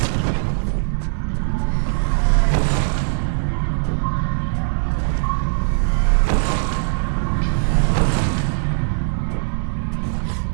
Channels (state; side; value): silent; left; digital silence